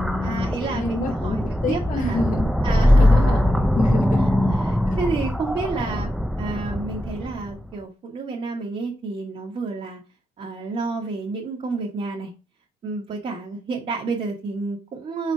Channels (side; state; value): both; normal; correlation 0.86